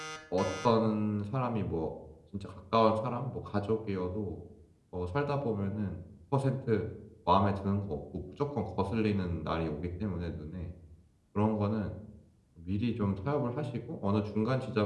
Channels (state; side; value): identical; both; correlation 1.00